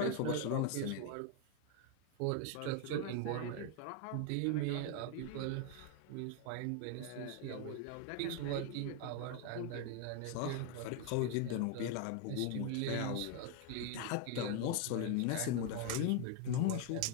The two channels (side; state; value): both; different; correlation 0.01